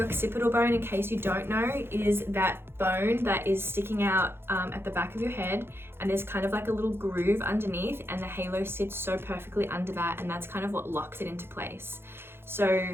occipital bone, in case you don't know, is that bone that is sticking out at the back of your head, and there's kind of like a little groove underneath, and the halo sits so perfectly under that, and that's kind of what locks it into place. So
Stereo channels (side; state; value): left; late; 0.11 ms